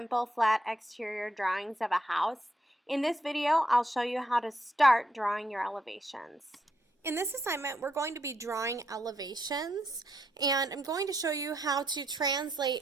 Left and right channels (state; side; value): normal; both; correlation 0.78